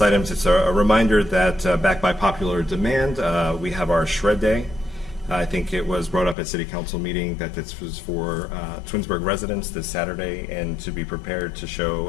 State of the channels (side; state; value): right; drops out; at 6.4 s